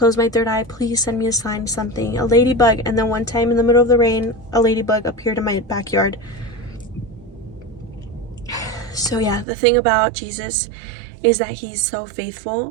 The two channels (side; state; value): left; drops out; at 9.5 s